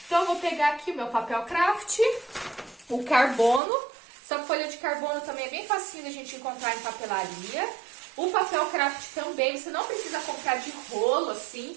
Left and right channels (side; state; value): left; drops out; at 3.6 s